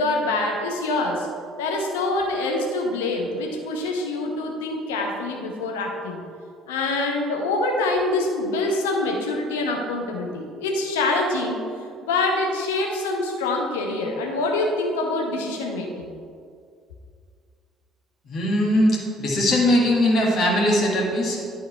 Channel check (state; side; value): normal; both; correlation 0.49